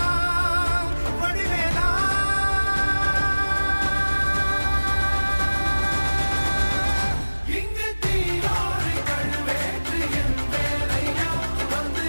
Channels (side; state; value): both; inverted; correlation -1.00